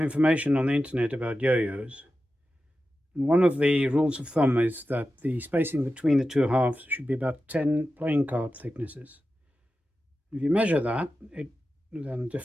on the internet about yo-yos. One of the rules of thumb is that the spacing between the two halves should be about 10 playing card thicknesses. If you measure that, then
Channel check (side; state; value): both; normal; correlation 0.92